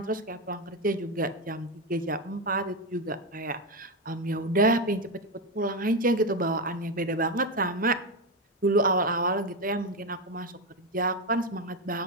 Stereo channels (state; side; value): normal; both; correlation 0.11